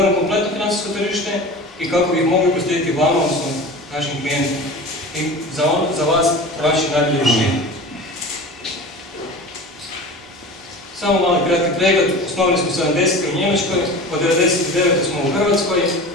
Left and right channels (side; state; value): both; normal; correlation 0.35